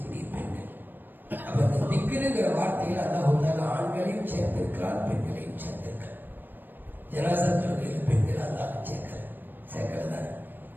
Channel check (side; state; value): left; late; 0.092 ms